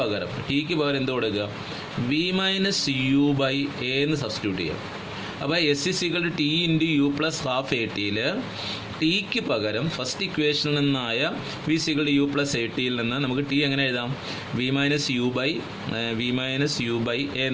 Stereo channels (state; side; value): identical; both; correlation 1.00